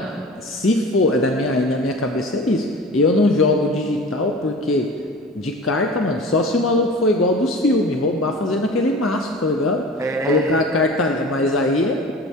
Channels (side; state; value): both; normal; correlation 0.38